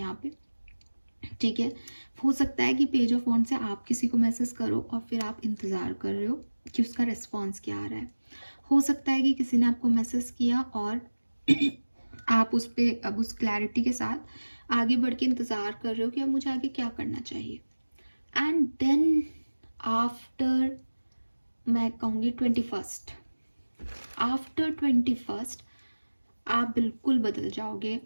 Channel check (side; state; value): both; inverted; correlation -1.00